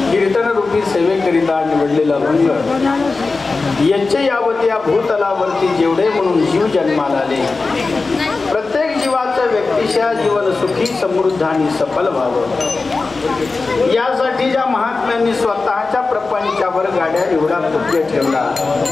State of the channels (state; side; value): quieter; right; 3.9 dB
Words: कीर्तन रूपी सेवेकरिता निवडलेला अभंग यच्चे यावत या भूतलावरती जेवढे म्हणून जीव जन्माला आले, प्रत्येक जीवाचं व्यक्तिशा जीवन सुखी समृद्ध आणि सफल व्हावं यासाठी ज्या महात्म्यांनी स्वतःच्या प्रपंचावर गाड्या एवढा पुण्य ठेवला